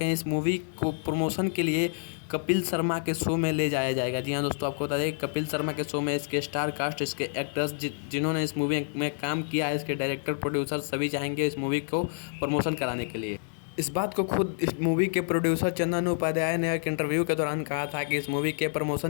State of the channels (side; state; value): right; silent; digital silence